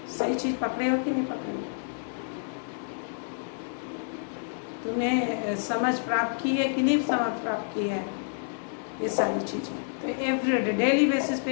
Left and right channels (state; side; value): silent; right; digital silence